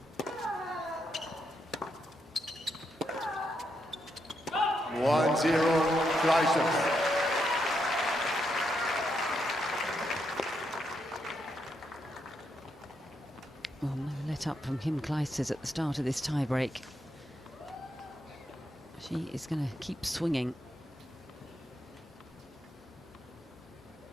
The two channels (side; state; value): both; normal; correlation 0.80